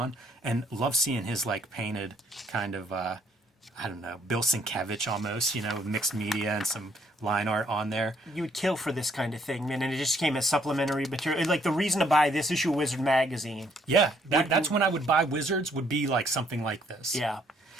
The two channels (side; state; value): both; normal; correlation 0.67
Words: And love seeing his like painted kind of, I don't know, Bill Sienkiewicz almost, mixed media and some line art on there. You would kill for this kind of thing, man, and it just came as supplementary material. Like, the reason to buy this issue of Wizard magazine. Yeah, that's when I would buy Wizards, would be like something like this. Yeah.